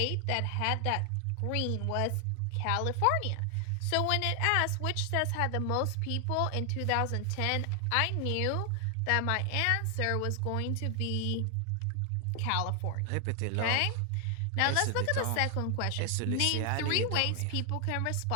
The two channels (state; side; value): different; both; correlation 0.00